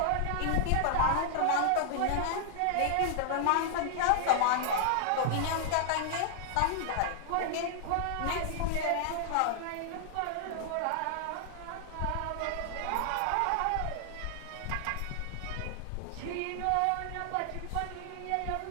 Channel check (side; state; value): both; different; correlation 0.00